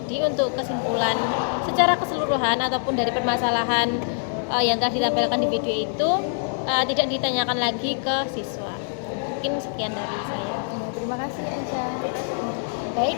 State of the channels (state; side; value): silent; right; digital silence